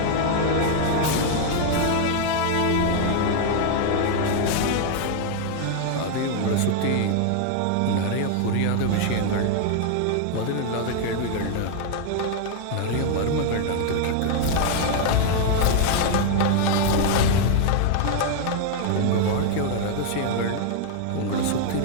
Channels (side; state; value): both; different; correlation 0.00